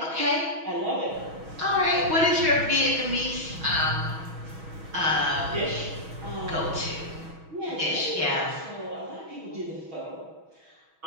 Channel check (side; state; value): left; late; 6.2 ms